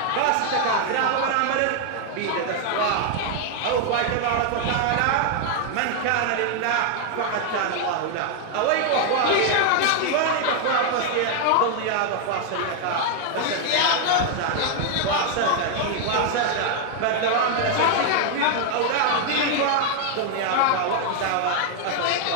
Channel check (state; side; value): different; both; correlation 0.00